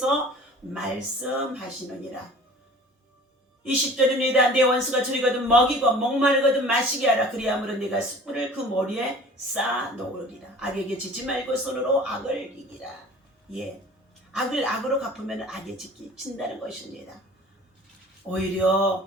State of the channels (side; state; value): both; normal; correlation 0.45